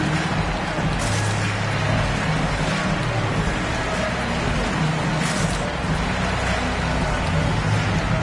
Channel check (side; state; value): both; identical; correlation 1.00